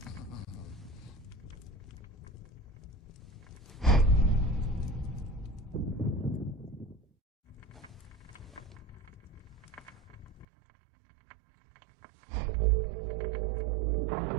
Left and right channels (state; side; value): drops out; left; at 10.5 s